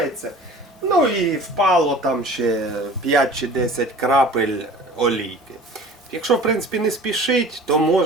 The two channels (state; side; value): normal; both; correlation 0.43